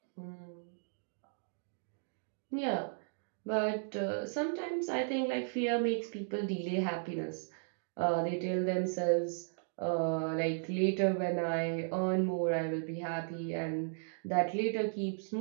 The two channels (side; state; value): left; silent; digital silence